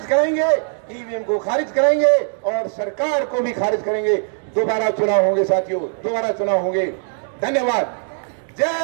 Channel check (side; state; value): left; silent; digital silence